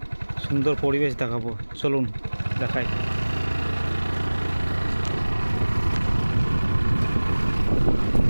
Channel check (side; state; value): both; inverted; correlation -1.00